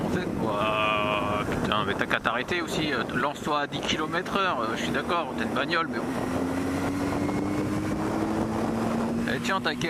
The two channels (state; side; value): identical; both; correlation 1.00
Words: en fait, putain, mais t'as qu'à t'arrêter aussi, lance-toi à 10 km/h, je suis d'accord, t'as une bagnole, mais bon. Et tiens ta